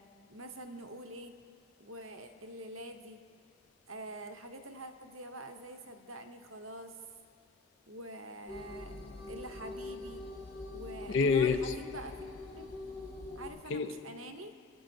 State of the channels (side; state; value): right; quieter; 3.7 dB